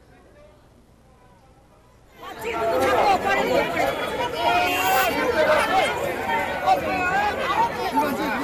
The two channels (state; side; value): identical; both; correlation 1.00